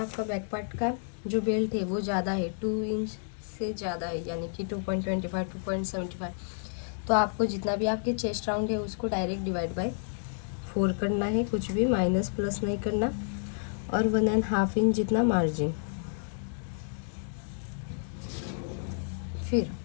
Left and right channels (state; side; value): silent; right; digital silence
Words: बैक पार्ट का जो बेल्ट है वो ज़्यादा है, 2 इंच से ज़्यादा है, यानी कि 2.25 2.75, तो आपको जितना भी आपके चेस्ट राउंड है उसको डायरेक्ट डिवाइड बाय 4 करना है, कुछ भी माइनस प्लस नहीं करना। और 1.5 इंच जितना मार्जिन। फिर